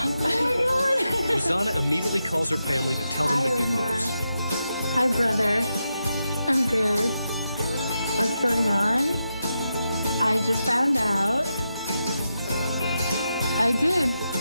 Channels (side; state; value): both; inverted; correlation -0.87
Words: Rosanna immediately calls her family to tell them the good news. Hi, brother. I'm good. What's going on? I just found out. I did.